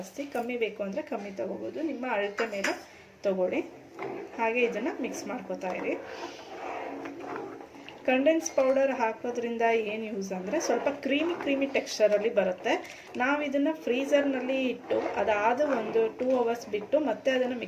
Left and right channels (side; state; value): both; identical; correlation 1.00